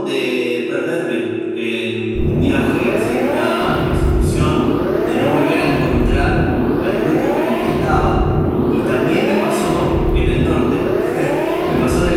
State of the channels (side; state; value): both; identical; correlation 1.00